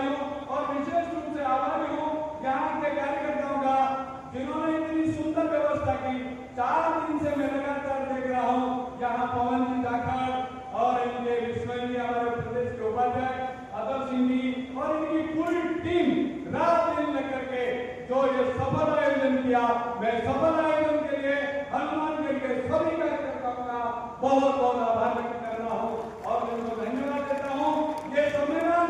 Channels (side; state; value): both; identical; correlation 1.00